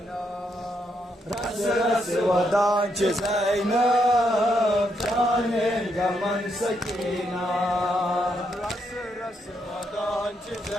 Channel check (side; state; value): both; normal; correlation 0.78